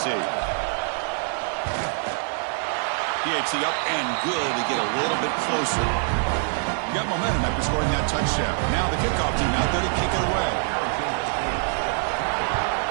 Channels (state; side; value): silent; left; 57 dB below the other